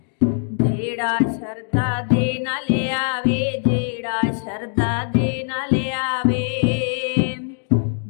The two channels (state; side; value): silent; right; digital silence